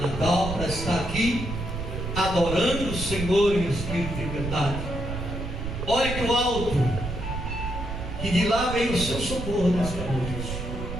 para estar aqui adorando o Senhor em espírito e verdade. Olhe para o alto, que de lá vem o seu socorro nesta noite.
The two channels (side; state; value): right; noise; rumble, 6 dB below the sound